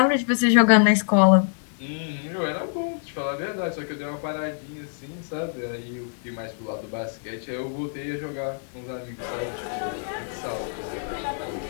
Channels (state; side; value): silent; right; 60 dB below the other